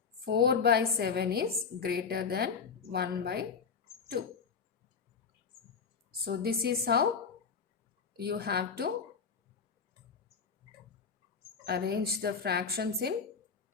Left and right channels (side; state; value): right; quieter; 5.8 dB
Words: 4 by 7 is greater than 1 by 2. So this is how you have to arrange the fractions in